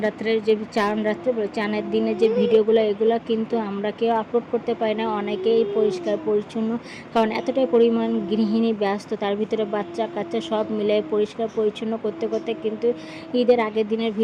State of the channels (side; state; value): both; identical; correlation 1.00